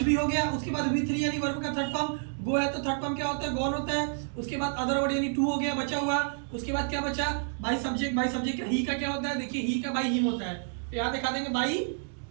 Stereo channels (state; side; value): silent; left; digital silence